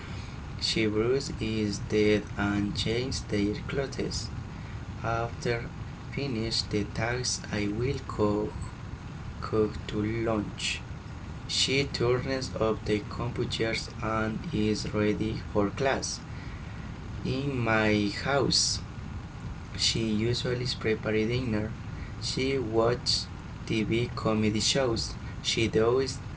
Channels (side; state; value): both; identical; correlation 1.00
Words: She brushes his teeth and changes their clothes. After finish the tasks, I will cook to lunch. She turns off the computers and is ready for class. In my house, she usually prepares dinner. She watches TV comedy shows. She does